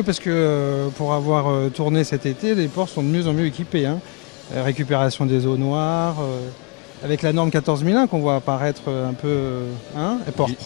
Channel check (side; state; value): right; quieter; 33.0 dB